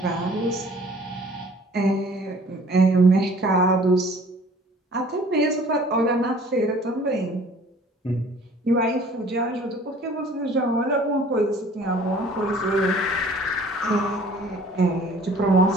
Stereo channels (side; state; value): both; normal; correlation 0.52